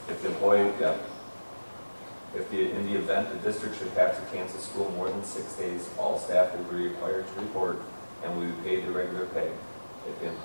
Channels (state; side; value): inverted; both; correlation -1.00